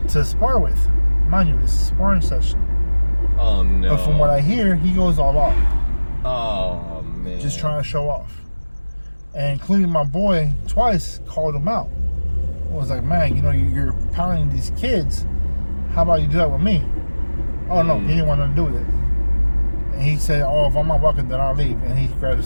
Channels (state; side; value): inverted; both; correlation -1.00